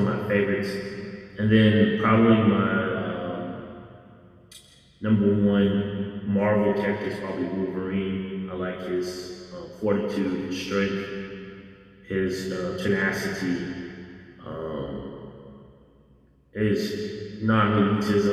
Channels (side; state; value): both; identical; correlation 1.00